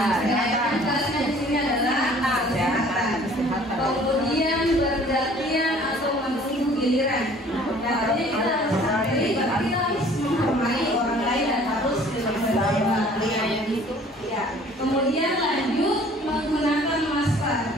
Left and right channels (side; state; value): both; normal; correlation 0.53